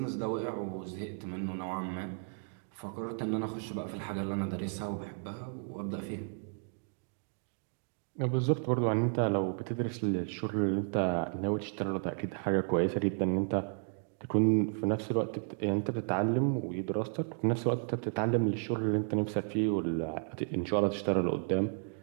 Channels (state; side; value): silent; left; 56 dB below the other